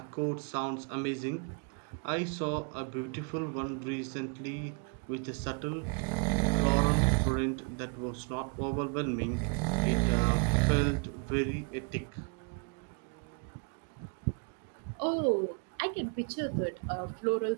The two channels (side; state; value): left; quieter; 34.8 dB